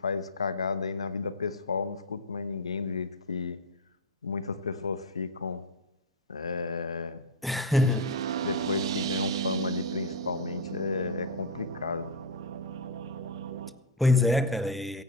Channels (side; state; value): both; normal; correlation 0.05